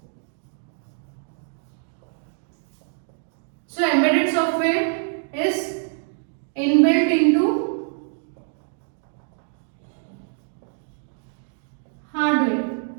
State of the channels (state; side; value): silent; left; 62 dB below the other